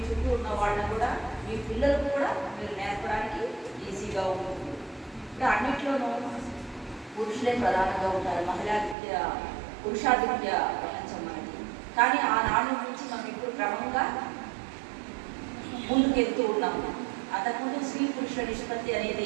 చుట్టూ ఉన్న వాళ్ళని కూడా మీ పిల్లలకు కూడా మీరు నేర్పడానికి ఈజీగా ఉంటుంది. ఇప్పుడు అన్నిట్లోనూ పురుషులే ప్రధానంగా ఉంటారు. మహిళా విద్య, పురుషాధిక్య ప్రపంచం మనకి. కానీ ఆనాడు నుంచి మనం ఇప్పుడు క్రమంగా ముందుకెళ్తూ ఉన్నాము. అంతకుముందు స్త్రీ పురుషుల నిష్పత్తి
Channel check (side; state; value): left; drops out; at 9.0 s